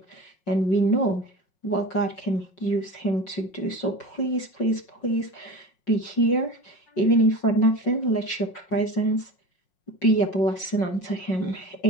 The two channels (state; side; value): late; right; 5.5 ms